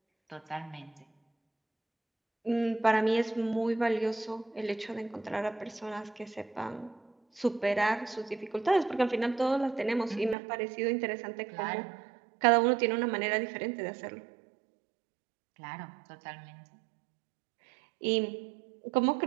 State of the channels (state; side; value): drops out; left; at 10.4 s